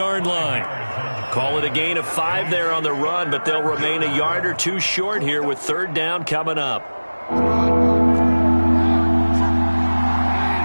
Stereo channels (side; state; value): both; inverted; correlation -1.00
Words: line. Call it a gain of 5 there on the run, but they'll remain a yard or 2 short here with 3rd down coming up.